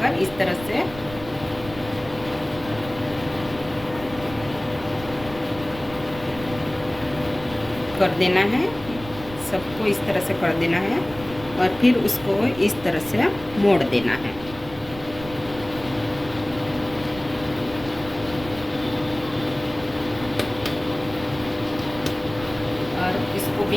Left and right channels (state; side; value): noise; right; rumble, 15 dB below the sound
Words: इस तरह से कर देना है। सबको इस तरह से कर देना है और फिर उसको इस तरह से मोड़ देना है। और इसको